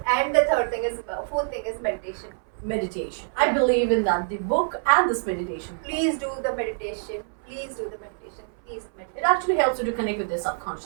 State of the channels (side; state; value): left; silent; 61 dB below the other